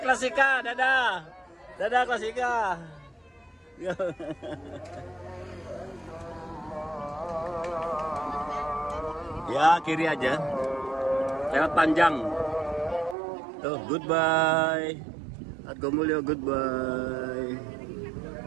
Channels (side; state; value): left; drops out; at 13.2 s